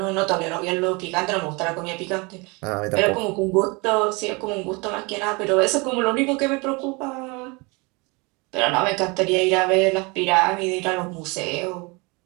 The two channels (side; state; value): left; quieter; 27.9 dB